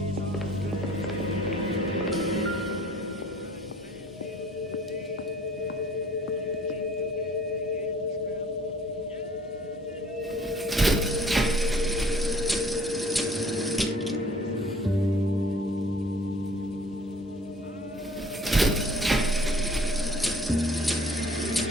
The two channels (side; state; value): both; normal; correlation 0.54